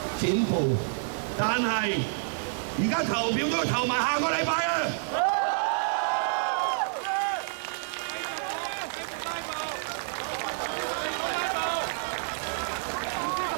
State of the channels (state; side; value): silent; left; digital silence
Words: 剪布，但係而家投票都要投埋下個禮拜啊！